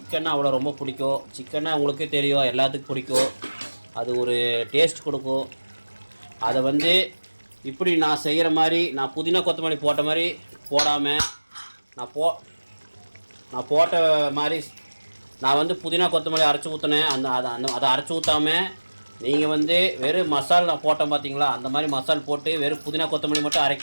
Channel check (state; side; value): inverted; both; correlation -1.00